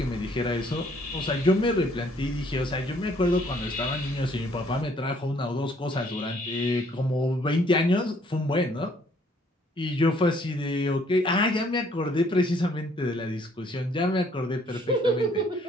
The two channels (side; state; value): both; normal; correlation 0.63